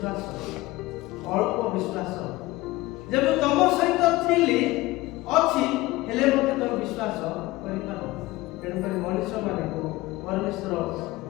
ଅଳ୍ପ ବିଶ୍ୱାସ, ଯେ ମୁଁ ତମ ସହିତ ଥିଲି ଅଛି, ହେଲେ ମୋତେ ତମେ ବିଶ୍ୱାସ କରିପାର। ତେଣୁକରି ମଣିଷମାନଙ୍କୁ ପରମେଶ୍ୱର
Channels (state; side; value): quieter; right; 19.3 dB